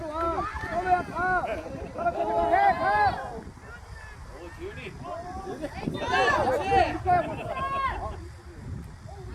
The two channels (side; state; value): both; identical; correlation 1.00